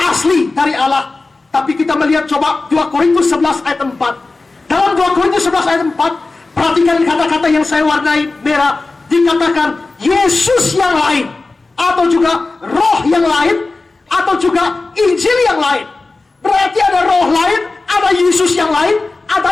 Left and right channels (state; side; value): quieter; right; 3.5 dB